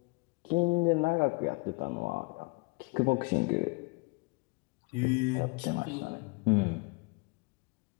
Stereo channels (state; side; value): quieter; right; 28.7 dB